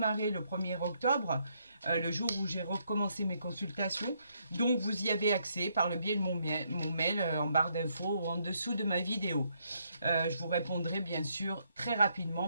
le 1er octobre, le jour où j'ai recommencé mes consultations. Donc, vous y avez accès par le biais de mon mail en barre d'infos ou en dessous de ma vidéo. Je vous répondrai bien sûr très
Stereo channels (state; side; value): inverted; both; correlation -0.74